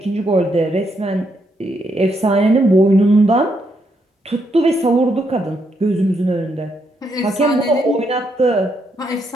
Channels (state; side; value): normal; both; correlation 0.77